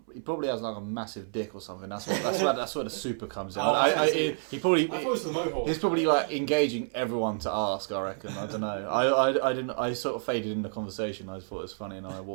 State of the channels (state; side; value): silent; left; 58 dB below the other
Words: He probably has like a massive dick or something. That's where the super comes in. Oh, He probably. I thought it was the Mohawk. He's probably like engaging everyone to ask. I reckon. I don't know. I didn't. I sort of faded in the conversation. I thought it was funny, and I